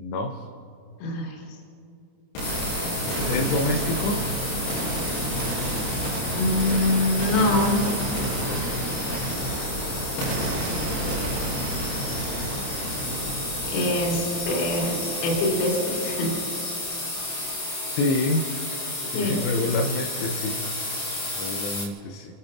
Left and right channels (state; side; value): late; right; 29 ms